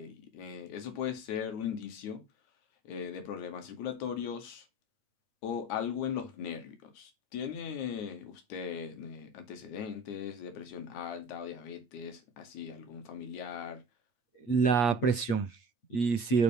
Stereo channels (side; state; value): right; late; 8.4 ms